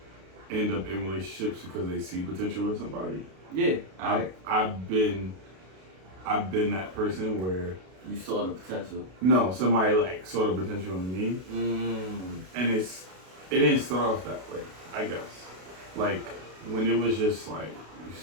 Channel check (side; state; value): left; late; 32 ms